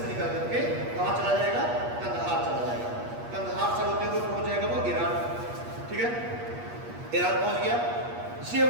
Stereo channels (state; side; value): late; left; 8.4 ms